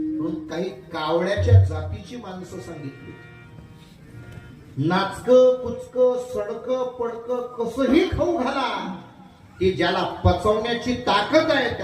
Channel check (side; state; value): both; identical; correlation 1.00